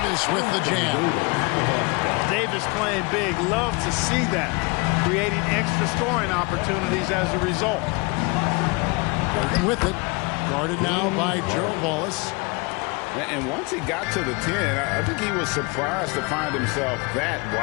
with the jam. Davis playing big. Love to see that. Creating extra scoring opportunities as a result. Working with it. Guarded now by Gerald Wallace. And once he got to the 10, I think he was surprised to find himself that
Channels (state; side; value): quieter; right; 28.1 dB